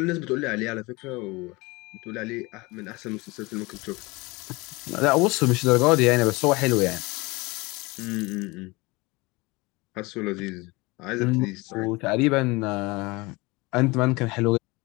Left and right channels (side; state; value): right; quieter; 24.1 dB